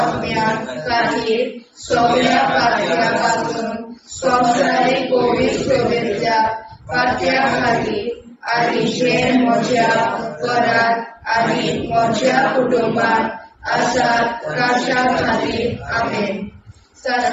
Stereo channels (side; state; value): both; identical; correlation 1.00